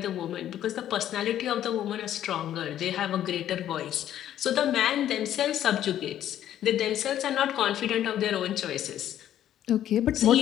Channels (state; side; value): quieter; right; 11.4 dB